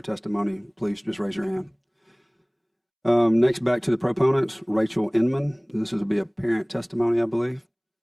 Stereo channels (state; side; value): identical; both; correlation 1.00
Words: testimony, please just raise your hand. Next, back to the proponents, Rachel Inman. This will be a parent testimony, I believe.